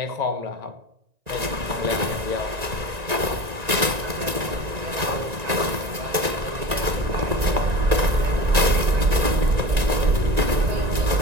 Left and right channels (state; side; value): late; left; 1.9 ms